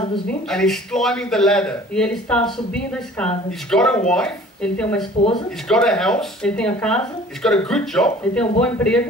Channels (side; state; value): both; normal; correlation 0.49